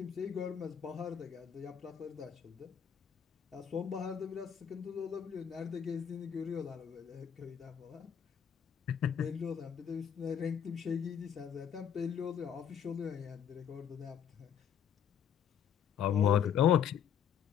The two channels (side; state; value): right; quieter; 8.4 dB